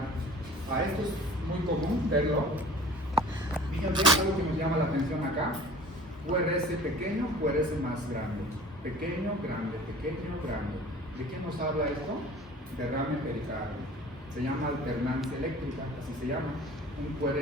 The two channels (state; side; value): normal; both; correlation 0.45